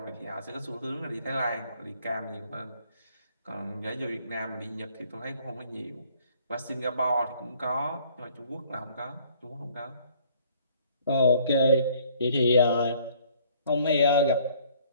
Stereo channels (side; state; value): both; inverted; correlation -0.58